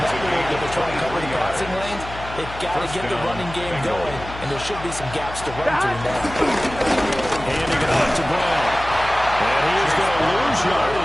up a little bit to try to cover the passing lanes. They've got to get the running game going, and there should be some gaps to run through now. Handing it off to Brown. And he is going to lose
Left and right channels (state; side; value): noise; left; hum, 12 dB below the sound